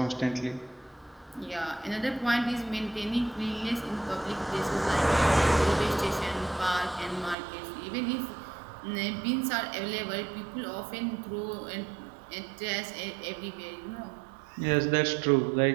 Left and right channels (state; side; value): drops out; left; at 7.4 s